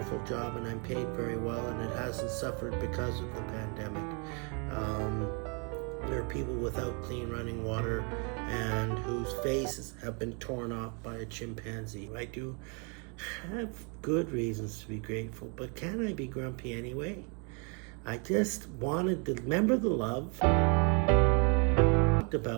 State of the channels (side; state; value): left; quieter; 35.6 dB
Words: job and I'm paid very well, and it hasn't suffered because of the pandemic. There are people without clean running water and whose faces have been torn off by a chimpanzee. I do have good reasons to be grateful, but can I be grumpy anyway? I just wanted to remember the love. Talked